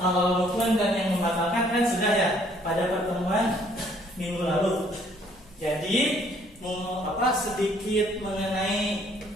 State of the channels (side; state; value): both; normal; correlation 0.62